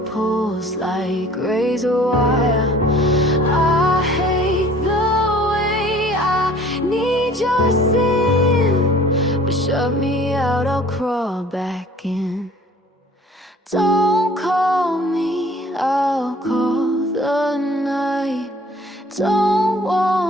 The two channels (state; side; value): normal; both; correlation 0.51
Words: like razor wire. I hate the way I need your sin, but shut me out, I'll crawl back in. Don't call me, I'll call the night. Don't